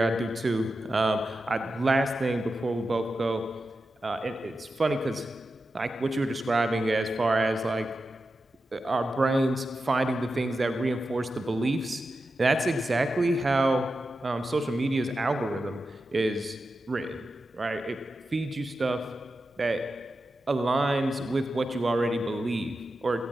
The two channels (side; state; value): both; normal; correlation 0.91